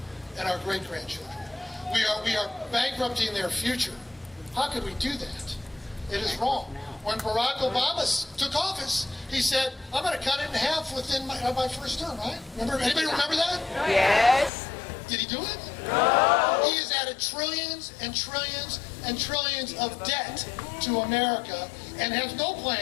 and our great-grandchildren. We are bankrupting their future. How could we do that? It is wrong. When Barack Obama took office, he said, I'm going to cut it in half within my first term, right? Anybody remember that? Yes. Did he do it? No. He has added trillions and trillions and trillions of debt to America and has no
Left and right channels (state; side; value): drops out; right; at 14.5 s